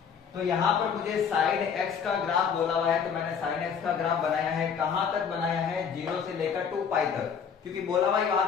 तो यहां पर मुझे साइन एक्स का ग्राफ बोला हुआ है, तो मैंने साइन एक्स का ग्राफ बनाया है, कहां तक बनाया है, 0 से लेकर 2 पाई तक, क्योंकि बोला हुआ ही वहां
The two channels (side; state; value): right; quieter; 6.9 dB